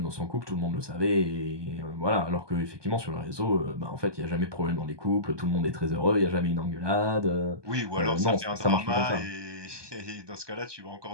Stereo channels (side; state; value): left; late; 1.2 ms